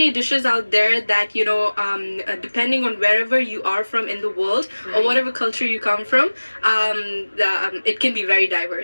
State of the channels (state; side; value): inverted; both; correlation -1.00